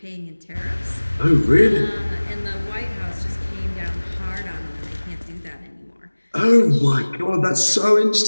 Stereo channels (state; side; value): inverted; both; correlation -1.00